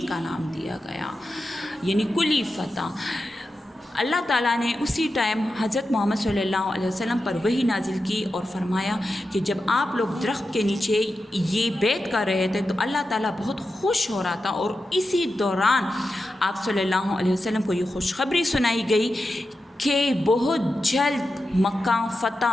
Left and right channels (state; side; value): normal; both; correlation 0.90